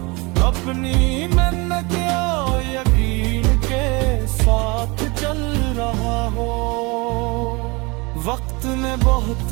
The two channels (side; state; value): left; quieter; 26.6 dB